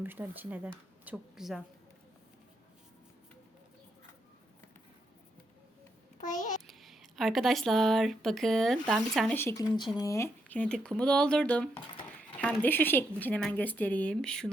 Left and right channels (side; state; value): both; normal; correlation 0.79